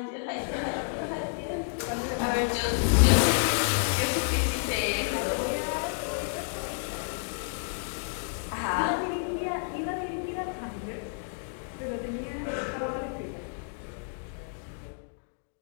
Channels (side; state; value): right; silent; digital silence